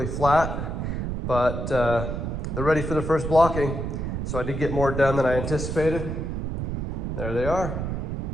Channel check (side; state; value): right; noise; rumble, 3 dB below the sound